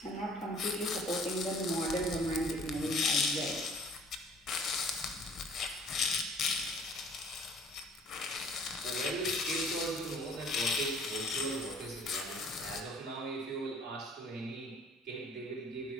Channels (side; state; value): both; normal; correlation 0.54